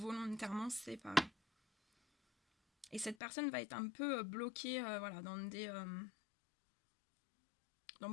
séparé. Et cette personne va être un peu bloquée voilà, dans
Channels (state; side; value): drops out; right; at 3.2 s